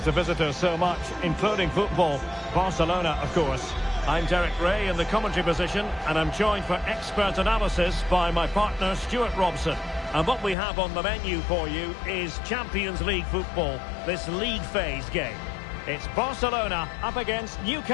the visitors so much, including football. Barcelona, of course. I'm Derek Ray in the commentary position, and I'm joined for expert analysis by my partner, Stuart Robson. And what we have on the menu for you is Champions League football, this league phase game. It's Barcelona up against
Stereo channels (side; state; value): right; drops out; at 10.6 s